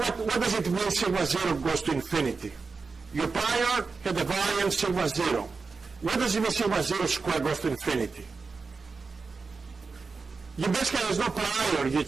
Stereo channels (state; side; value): quieter; left; 4.5 dB